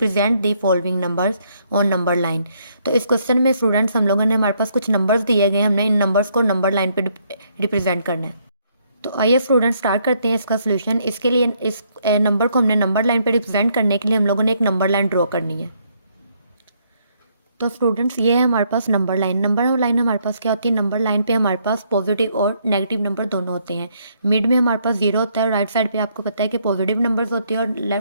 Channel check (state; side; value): inverted; both; correlation -0.71